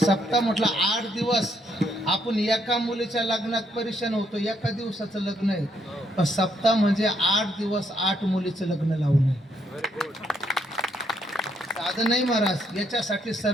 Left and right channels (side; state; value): both; normal; correlation 0.74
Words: म्हटलं 8 दिवस आपण एका मुलीच्या लग्नात परेशान होतो. एका दिवसाचं लग्न आहे, पण सप्ताह म्हणजे 8 दिवस 8 मुलीचं लग्न लावून आहे. साधं नाही महाराज. याच्यासाठी